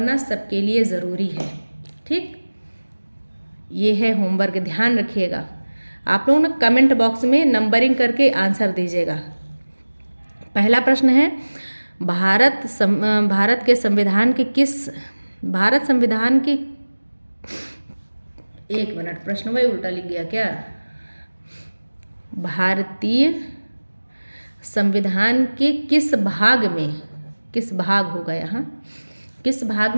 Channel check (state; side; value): inverted; both; correlation -1.00